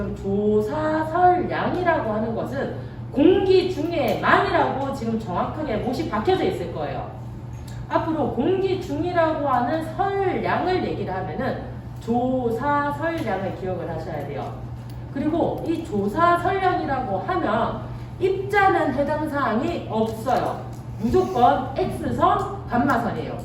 조사설량이라고 하는 것은 공기 중에만이라고 지금 정확하게 못이 박혀져 있을 거예요. 앞으로 공기 중이라고 하는 설량을 얘기를 하면은 조사설량을 기억을 하셔야 돼요. 그리고 이 조사설량이라고 하면 입자는 해당 사항이 없어요. 무조건 X선, 감마선이에요.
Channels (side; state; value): both; identical; correlation 1.00